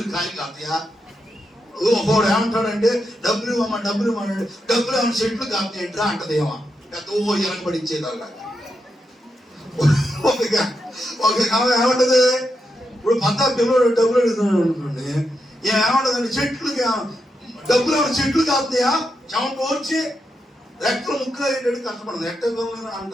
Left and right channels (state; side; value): normal; both; correlation 0.85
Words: కాయలు కాస్తాయా? ఒకడు ఏమంటాడంటే డబ్బులు ఇవ్వమ్మా, డబ్బులు ఇవ్వమంటాడు. డబ్బులు ఏమన్నా చెట్లు కాస్తాయంట్రా అంటదేమో, వెనకబడిచ్చేదాకా. ఒక ఏమంటది? ఇప్పుడు పంతా పిల్లలు డబ్బులు అడుగుతున్నాడు అనుకోండి, ఏమంటదండి? చెట్లుకి డబ్బులు ఏమన్నా చెట్లు కాస్తాయా? చెమట వచ్చి రెక్కలు ముక్కలు అయ్యేటట్టు కష్టపడదు, ఎట్ట